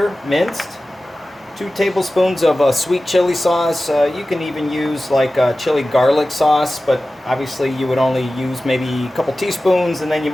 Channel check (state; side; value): normal; both; correlation 0.96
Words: minced, 2 tablespoons of sweet chili sauce. You can even use like chili garlic sauce, but obviously you would only use maybe a couple teaspoons, and then you